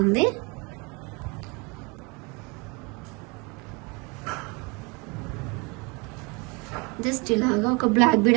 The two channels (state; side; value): quieter; left; 29.6 dB